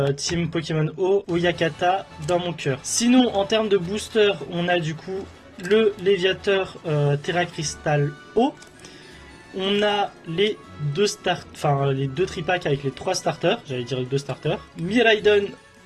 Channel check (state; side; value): identical; both; correlation 1.00